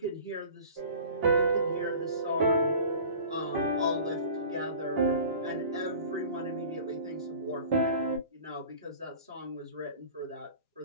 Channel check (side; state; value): both; inverted; correlation -0.43